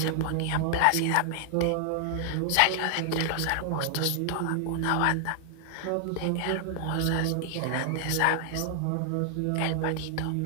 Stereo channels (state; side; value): different; both; correlation 0.00